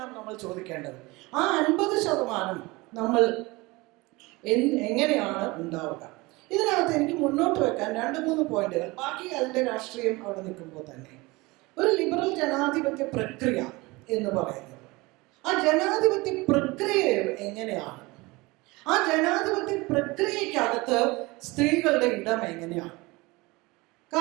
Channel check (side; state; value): left; quieter; 23.1 dB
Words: നമ്മൾ ചോദിക്കേണ്ടത്. ആ 50% നമ്മൾ എങ്ങനെയാണ് ഉണ്ടാവുക? ഇതിനകത്ത് എനിക്ക് മുന്നോട്ട് വെക്കാൻ 2-3 പോയിന്റുകൾ, ബാക്കി അതിന്റെ രാഷ്ട്രീയം അവിടെ നിൽക്കുമ്പോൾ തന്നെ. ഒരു ലിബറൽ ജനാധിപത്യ പ്രക്രിയ എന്ന് പറയുന്നത്, ആ ജനാധിപത്യ പ്രക്രിയ എങ്ങനെയാണ്? ആ ജനാധിപത്യ പ്രക്രിയക്കകത്ത് സ്ത്രീകളുടെ ഇടം എങ്ങനെയാണ്?